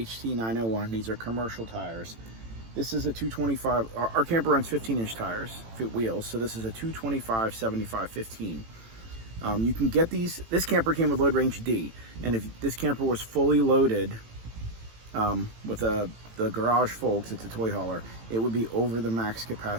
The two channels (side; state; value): left; late; 18 ms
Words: These are commercial tires. This is a 225. Our camper runs 15-inch tires, wheels. So this is a 225 75 15. You can get these. This camper came with load range D, and if this camper was fully loaded with the garage full, because it's a toy hauler, it would be over the max